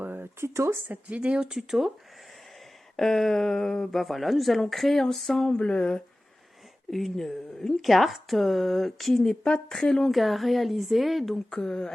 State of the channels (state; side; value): normal; both; correlation 0.97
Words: tuto, cette vidéo tuto. Voilà, nous allons créer ensemble une carte qui n'est pas très longue à réaliser, donc